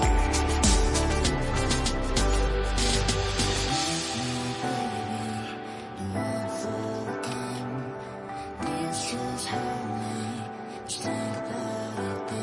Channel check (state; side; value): identical; both; correlation 1.00